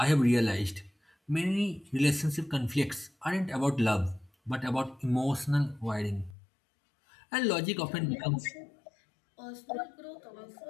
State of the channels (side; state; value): right; drops out; at 6.4 s